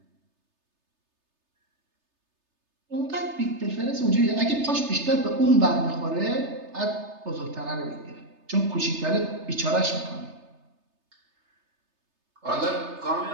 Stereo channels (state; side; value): late; left; 3.3 ms